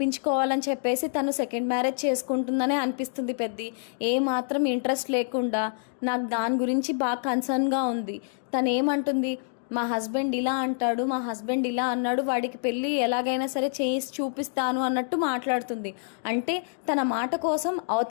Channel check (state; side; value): silent; right; digital silence